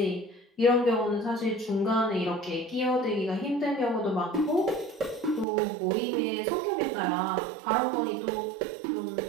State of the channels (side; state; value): left; drops out; at 5.5 s